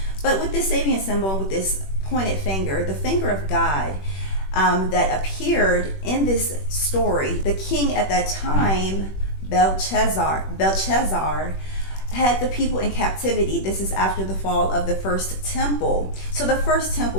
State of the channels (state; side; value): late; right; 21 ms